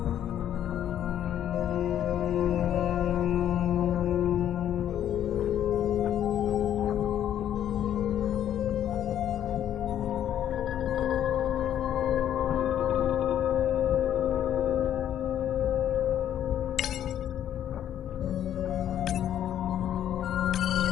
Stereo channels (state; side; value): quieter; right; 10.6 dB